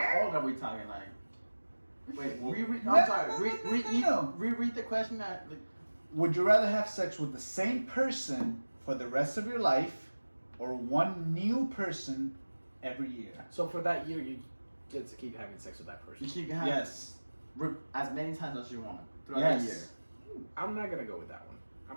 year? old are we talking? Like, wait, No, I'm sorry. no. Reread the question. That like, Would you rather have sex with the same person for the rest of your life, or one new person every year? So for that year, you get to keep having sex with that person. you keep having Yes. as many times as you want throughout the year. Yes. I'm not gonna go with that one. I'm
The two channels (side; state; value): both; inverted; correlation -1.00